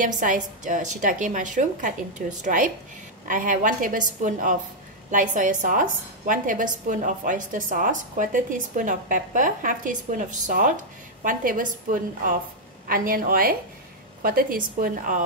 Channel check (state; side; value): normal; both; correlation -0.03